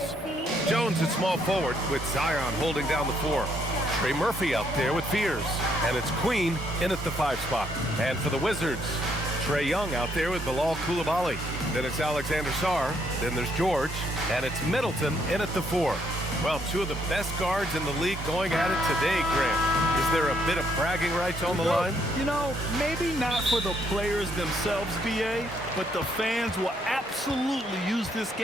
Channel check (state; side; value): normal; both; correlation 0.71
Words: Jones at small forward with Zion holding down the 4. Trey Murphy out there with Fears. And it's Queen in at the 5 spot. And for the Wizards, Trae Young out there with Bilal Coulibaly. Then it's Alexander Sarr. Then there's George. And it's Middleton in at the 4. Well, 2 of the best guards in the league going at it today, Grant. Is there a bit of bragging rights on the line? You know, maybe not for the players themselves, BA, but the fans will absolutely use this